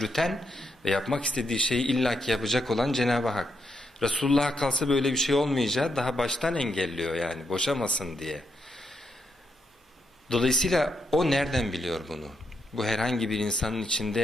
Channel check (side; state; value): both; normal; correlation 0.80